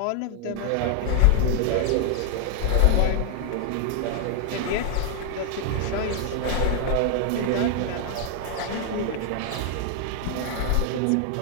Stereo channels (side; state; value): both; different; correlation 0.00